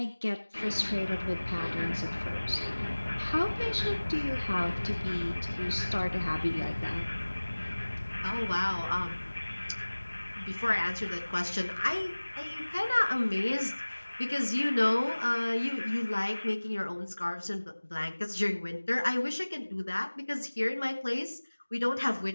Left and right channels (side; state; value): both; inverted; correlation -1.00